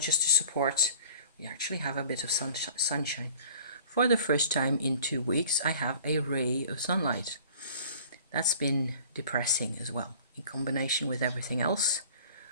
to support. We actually have a bit of sunshine. For the first time in 2 weeks, I have a ray of sunlight. That's been depressing as well, in combination with everything else.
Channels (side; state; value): both; inverted; correlation -0.49